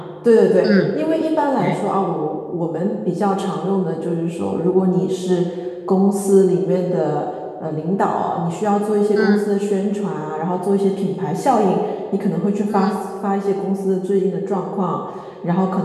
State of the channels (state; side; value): identical; both; correlation 1.00